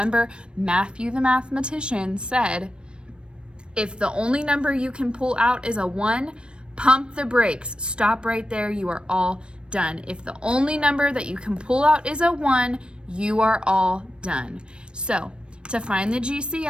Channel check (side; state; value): left; late; 0.056 ms